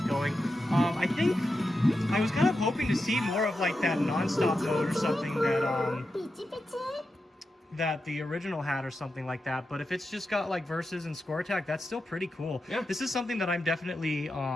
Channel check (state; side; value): normal; both; correlation 0.89